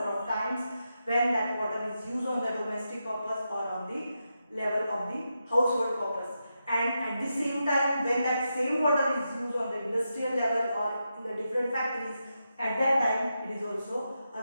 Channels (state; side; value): inverted; both; correlation -0.87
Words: of times when that water is used on the domestic purpose or on the level of the household purpose. And at the same time, when that same water is used on the industrial level or in the different factories, at that time it is also